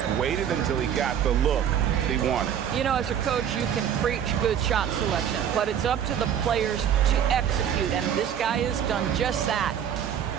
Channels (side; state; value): left; quieter; 9.1 dB